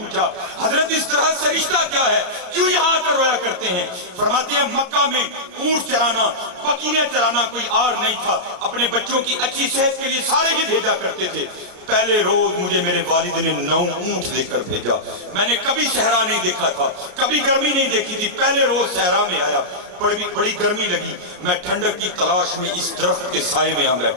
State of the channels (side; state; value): left; late; 33 ms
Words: हजरत इस दरख्त से रिश्ता क्या है, क्यों यहाँ आकर रोया करते हैं? फरमाते हैं मक्का में ऊंट चराना, बकरियां चराना कोई आर नहीं था, अपने बच्चों की अच्छी सेहत के लिए सारे ही भेजा करते थे। پہلے روز مجھے میرے والد نے 9 اونٹ دے کر بھیجا. میں نے کبھی صحرا نہیں دیکھا تھا, کبھی گرمی نہیں دیکھی تھی. پہلے روز صحرا میں آیا, بڑی گرمی لگی. میں ٹھنڈک کی تلاش میں اس درخت کے سائے میں آ